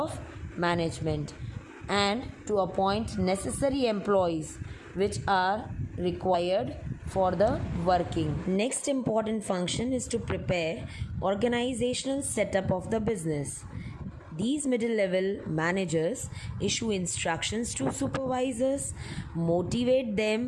management, and to appoint necessary employees which are required for the working. Next important function is to prepare organizational setup of the business. These middle level managers issue instructions to supervisors, motivate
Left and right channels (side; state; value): both; identical; correlation 1.00